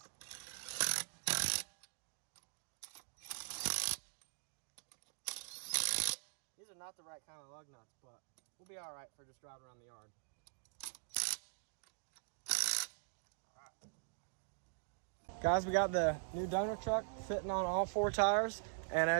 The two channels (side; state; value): left; silent; digital silence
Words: These are not the right kind of lug nuts, but we'll be all right for just driving around the yard. Guys, we got the new donor truck fitting on all 4 tires, and